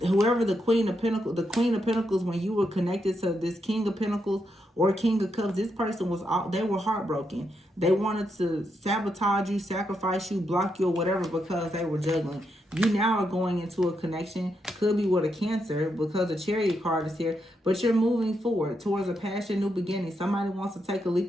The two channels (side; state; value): both; normal; correlation 0.82